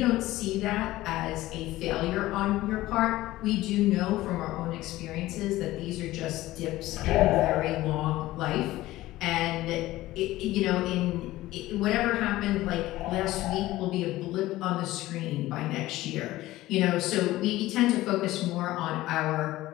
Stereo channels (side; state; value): right; quieter; 16.7 dB